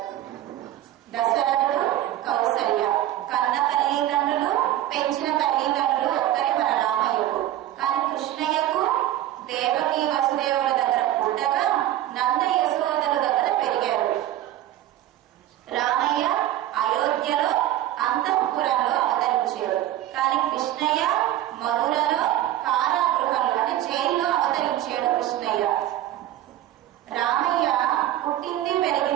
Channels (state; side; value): quieter; left; 13.3 dB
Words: దశరథుడు, కౌసల్య కన్న తల్లిదండ్రులు, పెంచిన తల్లిదండ్రులు ఒక్కరే మన రామయ్యకు. కానీ కృష్ణయ్యకు దేవకి వసుదేవుల దగ్గర పుట్టగా నంద యశోదల దగ్గర పెరిగారు. రామయ్య అయోధ్యలో అంతఃపురంలో అవతరించాడు. కానీ కృష్ణయ్య మధురలో కారాగృహంలో అంటే జైల్లో అవతరించాడు కృష్ణయ్య. రామయ్య పుట్టింది